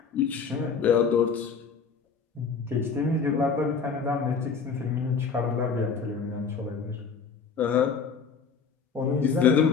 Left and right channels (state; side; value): quieter; right; 5.6 dB